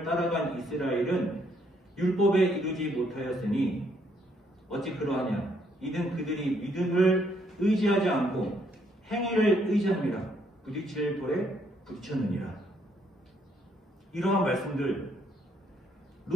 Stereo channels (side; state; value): both; normal; correlation 0.70